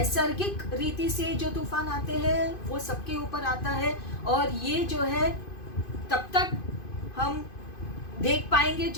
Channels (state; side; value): late; right; 2.5 ms